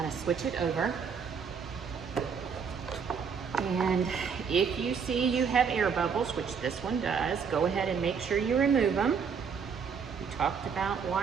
to switch it over. And if you see you have air bubbles, which this one does, go ahead and make sure you remove them. We talked about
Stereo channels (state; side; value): quieter; left; 6.3 dB